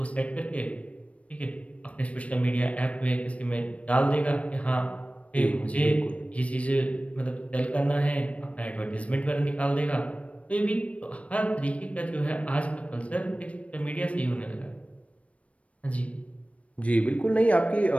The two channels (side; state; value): right; late; 0.064 ms